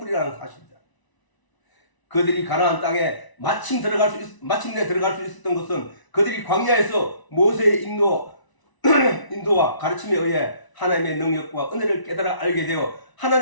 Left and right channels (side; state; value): right; late; 1.0 ms